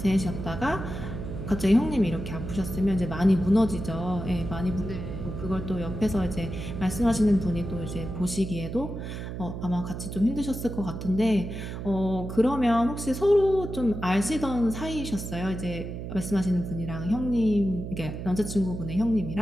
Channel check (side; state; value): right; noise; hum, 7 dB below the sound